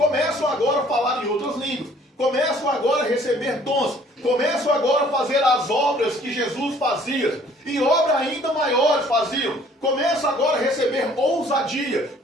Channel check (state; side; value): normal; both; correlation 0.57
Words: agora a falar em outras línguas, começam agora a receber dons, começam agora a fazer as obras que Jesus fazia, e obras ainda maiores faziam, começam agora a receber ousadia.